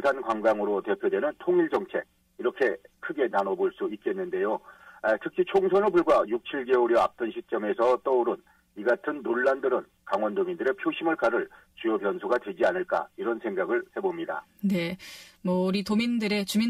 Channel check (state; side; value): identical; both; correlation 1.00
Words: 관광으로 대표되는 통일 정책 이렇게 크게 나눠볼 수 있겠는데요. 특히 총선을 불과 6, 7개월여 앞둔 시점에서 떠오른 이 같은 논란들은 강원도민들의 표심을 가를 주요 변수가 되지 않을까 이런 생각을 해봅니다. 네, 우리